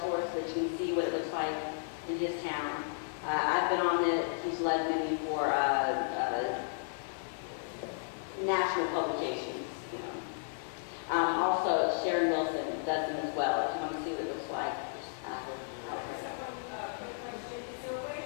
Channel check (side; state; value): right; silent; digital silence